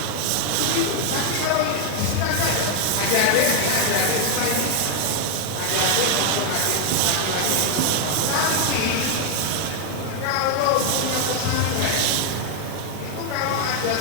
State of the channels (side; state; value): both; different; correlation 0.01